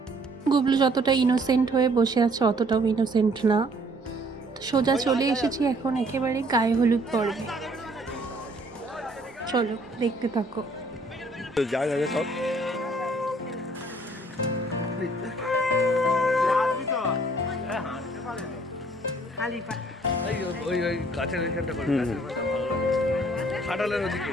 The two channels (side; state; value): both; normal; correlation 0.61